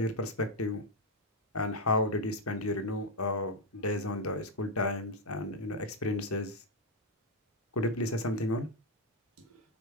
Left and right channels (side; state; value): both; normal; correlation 0.03